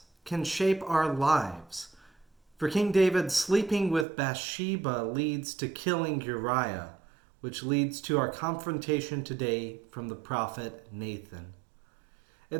can shape our lives. For King David, sleeping with Bathsheba leads to killing Uriah, which leads to our confrontation today from the prophet Nathan.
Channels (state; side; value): drops out; left; at 4.0 s